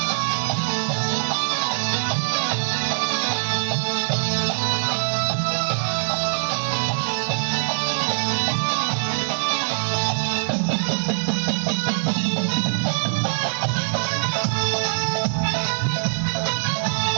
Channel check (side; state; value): left; silent; 61 dB below the other